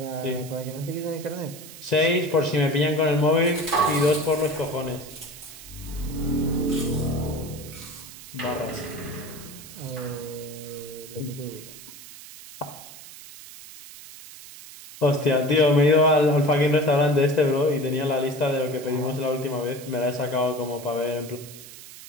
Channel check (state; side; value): noise; right; hiss, 16 dB below the sound